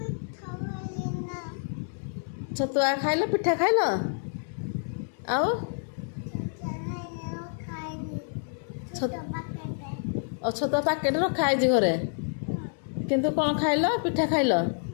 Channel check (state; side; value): silent; right; 59 dB below the other